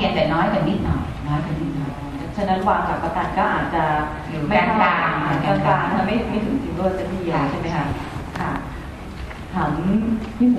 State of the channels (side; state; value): both; identical; correlation 1.00